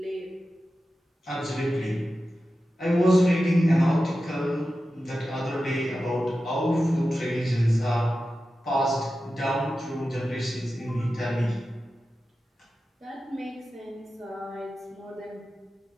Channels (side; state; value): both; normal; correlation 0.93